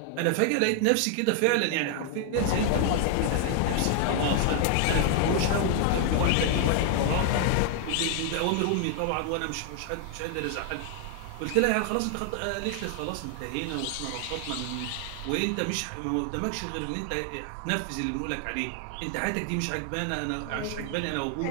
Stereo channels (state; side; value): different; both; correlation 0.00